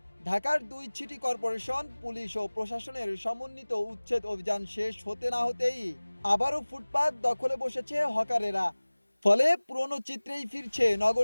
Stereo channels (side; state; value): both; inverted; correlation -1.00